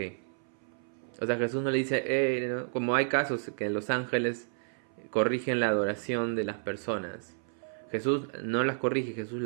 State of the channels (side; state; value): left; silent; 57 dB below the other